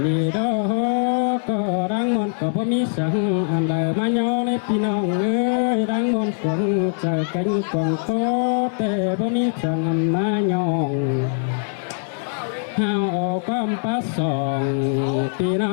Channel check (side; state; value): right; silent; digital silence